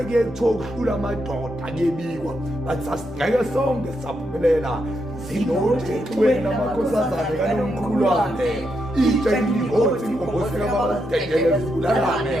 kuyethiwa ukuhlula amadoda kuyebikwa. Bathi sasingeke sonke saphumelela. Zinojengweni amakhosazane kaNomkhulwane itsheni ngothi ngobose babadekele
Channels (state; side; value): normal; both; correlation 0.82